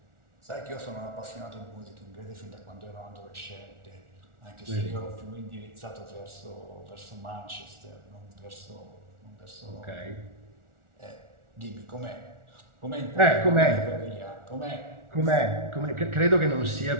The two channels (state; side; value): late; left; 1.4 ms